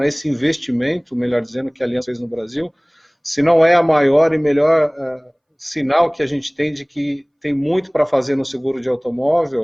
esse investimento, melhor dizendo, que a Allianz fez no Brasil, se não é a maior e melhor sinal que a gente tem de que tem muito para fazer no seguro de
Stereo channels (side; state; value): both; identical; correlation 1.00